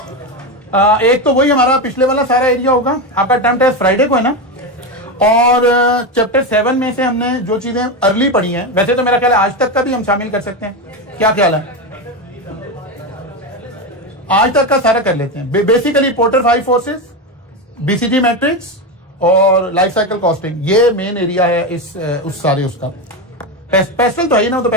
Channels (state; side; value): normal; both; correlation 0.14